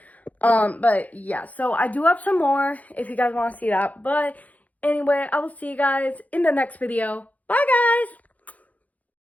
But yeah, so I do have some more if you guys want to see that. But anyway, I will see you guys in the next video. Bye,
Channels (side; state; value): right; late; 0.075 ms